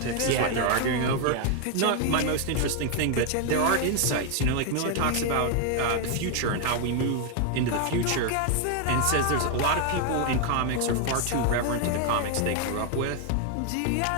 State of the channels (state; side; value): different; both; correlation 0.00